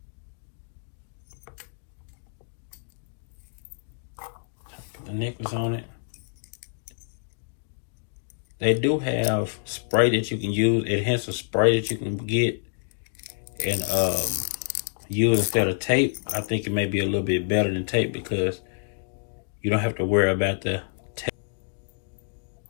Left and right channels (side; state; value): right; silent; digital silence